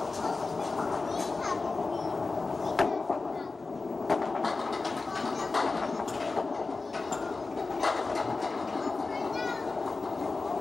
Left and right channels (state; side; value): quieter; right; 3.8 dB